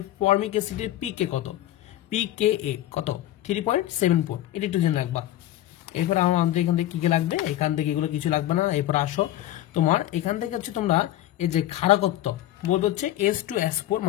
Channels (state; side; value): quieter; right; 13.9 dB